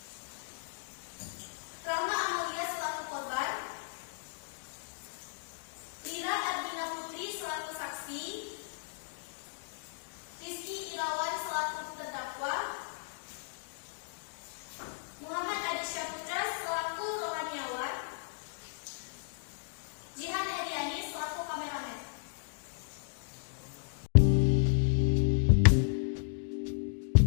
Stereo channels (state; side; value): silent; right; digital silence